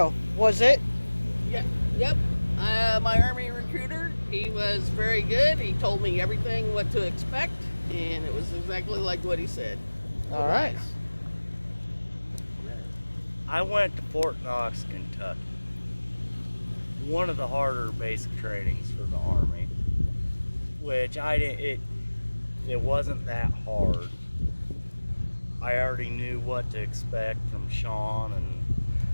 was it? Yeah. Yep. My Army recruiter, he was very good. He told me everything what to expect, and it was exactly like what he said. All right. Nice. I went to Fort Knox, Kentucky. One of the harder basic trainings for the Army, which it wasn't that hard. I already knew what to expect from Sean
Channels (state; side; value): inverted; both; correlation -1.00